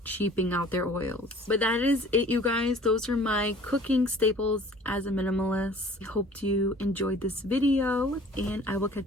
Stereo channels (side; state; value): both; normal; correlation 0.49